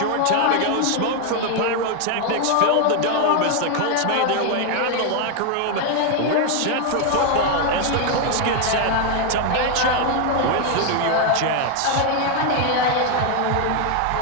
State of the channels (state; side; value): different; both; correlation 0.01